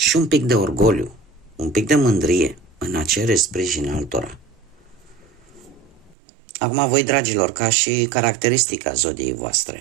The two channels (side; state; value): left; drops out; at 6.2 s